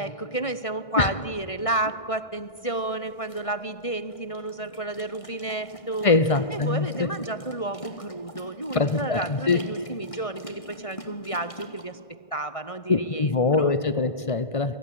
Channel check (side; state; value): right; late; 1.6 ms